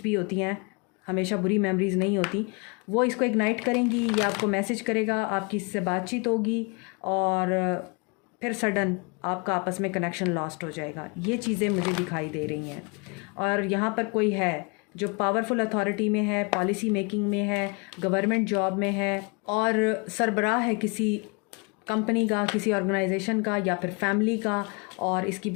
भी होती हैं, हमेशा बुरी मेमोरीज नहीं होती, वो इसको इग्नाइट करेंगी, ये आपको मैसेज करेगा, आपकी इससे बातचीत होगी, और फिर सडन आपका आपस में कनेक्शन लॉस्ट हो जाएगा। ये चीज़ें मुझे दिखाई दे रही हैं। और यहाँ पर कोई है जो पावरफुल अथॉरिटी में है, पॉलिसी मेकिंग में है, गवर्नमेंट जॉब में है, और सरबराह है किसी कंपनी का, किसी ऑर्गेनाइजेशन का, या फिर फैमिली का, और इसकी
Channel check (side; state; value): right; quieter; 31.8 dB